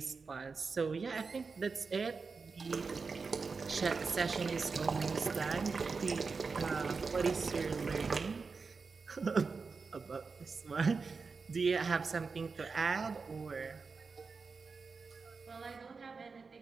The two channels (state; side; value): quieter; left; 4.7 dB